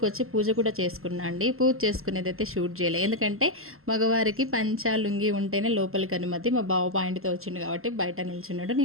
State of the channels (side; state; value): left; late; 0.62 ms